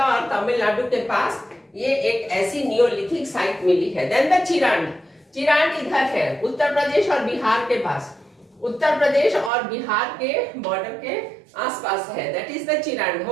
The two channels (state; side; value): drops out; left; at 9.5 s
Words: और तमिलनाडु के पास ये एक ऐसी नियोलिथिक साइट मिली है। देन द चिरांड इधर है, उत्तर प्रदेश और बिहार के पास, उत्तर प्रदेश और बिहार के बॉर्डर के आसपास है, दैट इज द चिरांड।